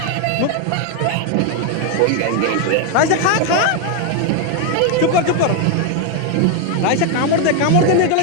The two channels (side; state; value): both; different; correlation 0.01